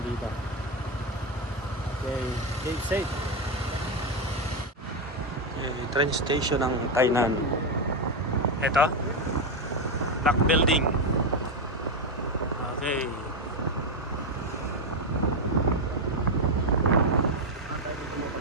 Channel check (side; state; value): both; normal; correlation 0.07